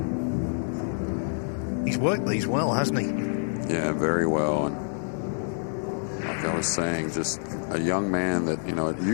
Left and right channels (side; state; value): right; silent; digital silence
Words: He's worked these well, hasn't he? Yeah, very well. And like I was saying, just a young man that, you know, it